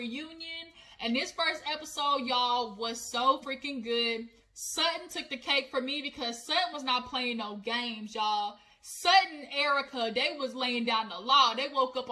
and this first episode, y'all, was so freaking good. Sutton took the cake for me because Sutton was not playing no games, y'all. Sutton and Erica, they was laying down the law. They woke up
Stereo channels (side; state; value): both; identical; correlation 1.00